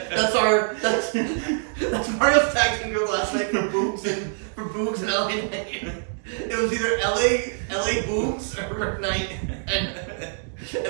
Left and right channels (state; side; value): silent; left; 59 dB below the other